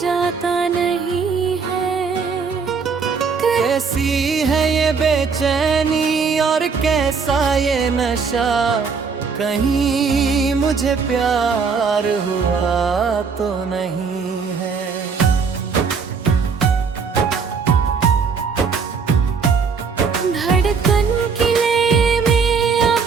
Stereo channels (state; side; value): quieter; left; 5.5 dB